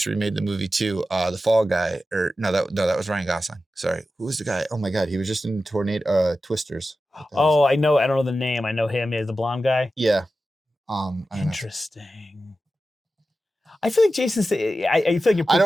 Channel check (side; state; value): both; normal; correlation 0.93